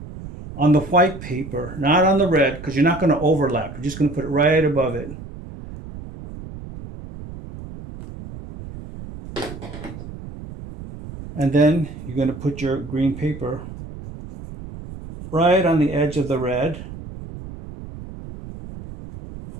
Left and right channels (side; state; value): right; noise; rumble, 13 dB below the sound